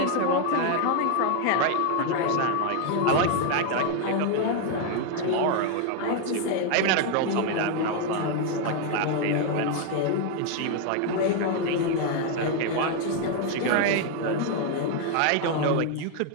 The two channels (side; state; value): both; different; correlation 0.01